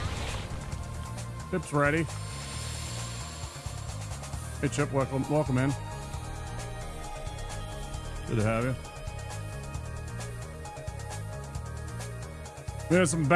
Chip's ready. Hey Chip, welcome in. Good to have you. We had some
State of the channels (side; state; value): both; identical; correlation 1.00